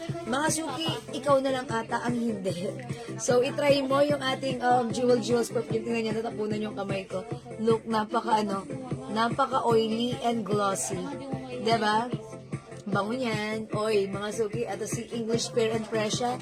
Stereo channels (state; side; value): identical; both; correlation 1.00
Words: Mga suki, ikaw na lang ata ang hindi. So, itry mo yung ating Jewels perfume. Tingnan niyo, natapunan yung kamay ko. Look, napaka-oily and glossy. Diba? Bango niyan. Oy, mga suki, at si English Parent Presya.